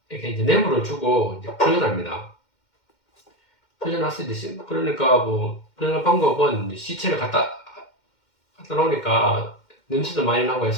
이렇게 이제 뇌물을 주고 이제 풀려납니다. 풀려났을 때 그러니까 뭐 풀려난 방법은 시체를 갖다 놓으니까 냄새도 많이 나고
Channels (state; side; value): late; right; 2.1 ms